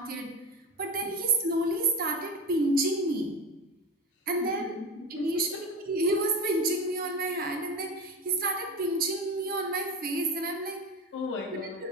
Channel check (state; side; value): normal; both; correlation 0.25